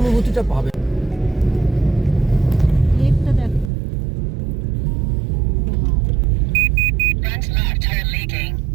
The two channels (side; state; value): left; drops out; at 3.7 s